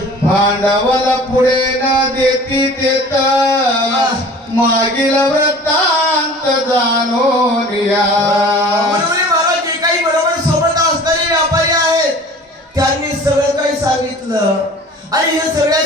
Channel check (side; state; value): both; normal; correlation 0.44